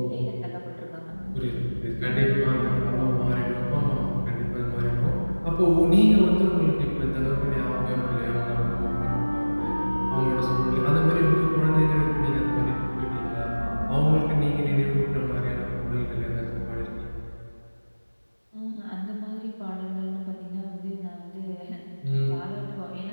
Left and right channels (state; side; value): inverted; both; correlation -1.00